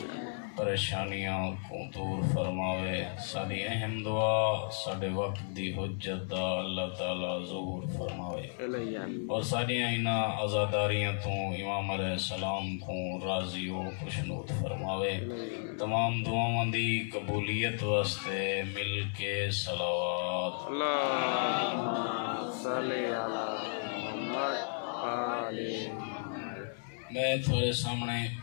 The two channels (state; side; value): silent; right; digital silence